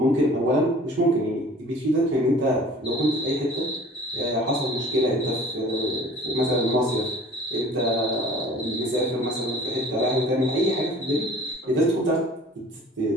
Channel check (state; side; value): normal; both; correlation 0.47